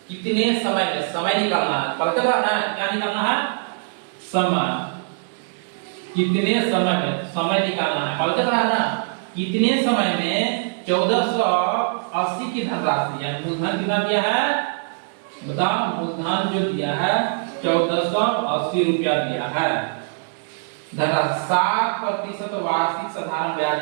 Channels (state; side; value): silent; left; digital silence